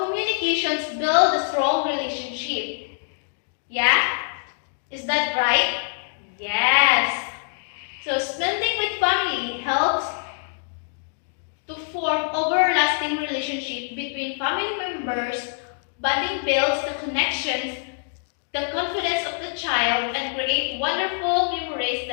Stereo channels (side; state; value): right; silent; 62 dB below the other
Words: build a strong relationship. Yeah? Is that right? Yes. So, spending with family helps to form everlasting relationship between family members, bonding builds the connections, the confidence of the child, and create wonderful memories